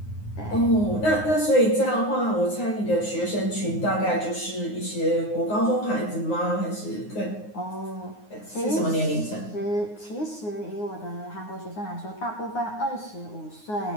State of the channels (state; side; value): late; right; 9.6 ms